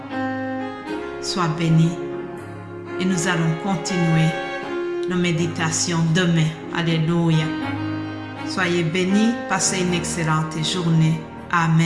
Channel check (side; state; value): both; identical; correlation 1.00